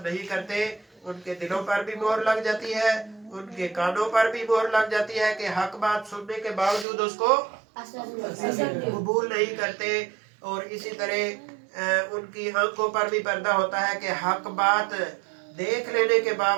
نہیں کرتے، ان کے دلوں پر بھی مہر لگ جاتی ہے، ان کے کانوں پر بھی مہر لگ جاتی ہے کہ حق بات سننے کے باوجود اس کو قبول نہیں کرتے. اور اسی طرح ان کی آنکھوں پر بھی پردہ ہوتا ہے کہ حق بات دیکھ لینے کے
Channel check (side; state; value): left; drops out; at 6.9 s